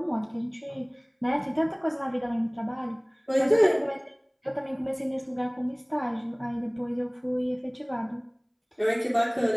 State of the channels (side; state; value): both; identical; correlation 1.00